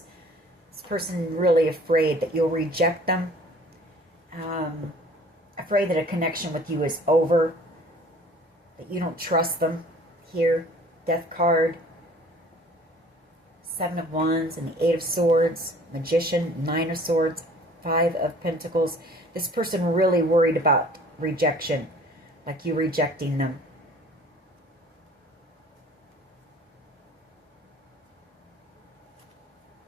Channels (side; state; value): both; normal; correlation 0.51